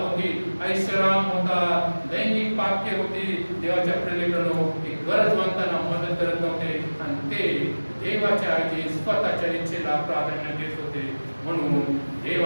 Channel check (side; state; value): both; inverted; correlation -1.00